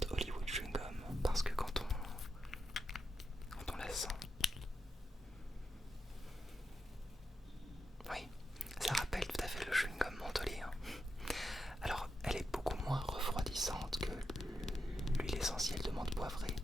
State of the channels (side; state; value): both; normal; correlation 0.87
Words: Hollywood Chewing Gum parce que quand on la sent, oui, ça rappelle tout à fait le chewing gum mentholé. Alors elle est beaucoup moins refroidissante que l'huile essentielle de menthe poivrée,